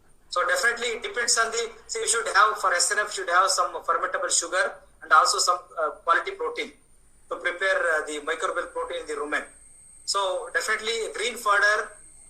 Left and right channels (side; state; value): both; identical; correlation 1.00